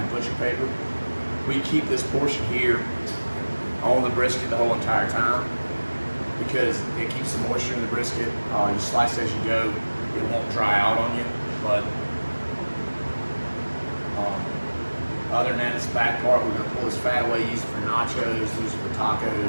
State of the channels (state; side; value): inverted; both; correlation -1.00